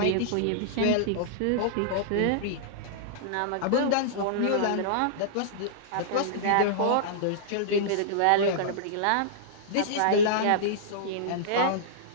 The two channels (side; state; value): both; different; correlation -0.02